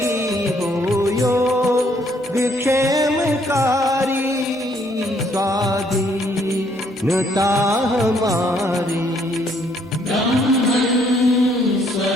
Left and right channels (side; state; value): both; normal; correlation 0.67